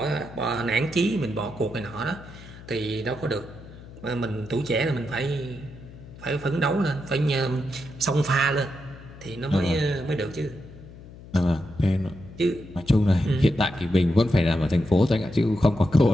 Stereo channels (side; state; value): left; noise; hum, 17 dB below the sound